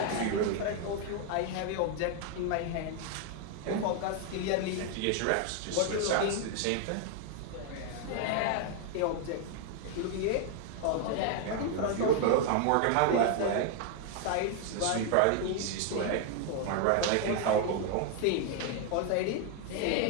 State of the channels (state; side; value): different; both; correlation 0.00